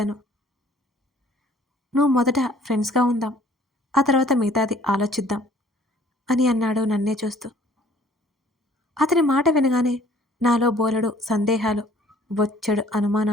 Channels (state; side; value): normal; both; correlation 0.56